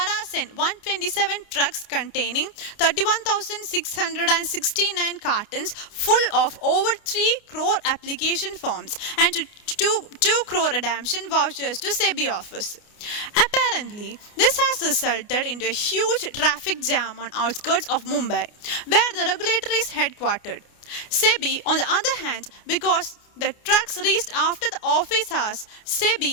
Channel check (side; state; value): right; late; 29 ms